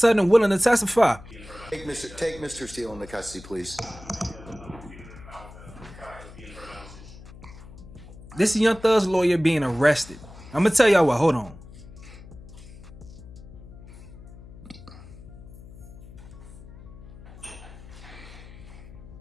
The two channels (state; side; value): noise; left; hum, 17 dB below the sound